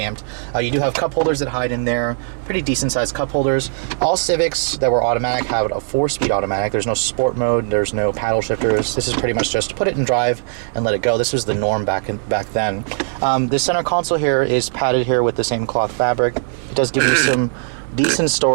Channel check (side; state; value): left; silent; digital silence